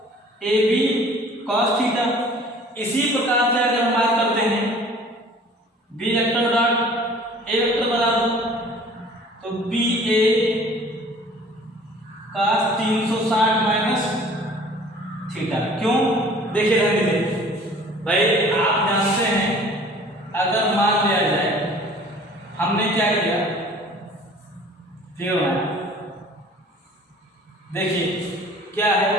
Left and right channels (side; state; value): both; normal; correlation 0.49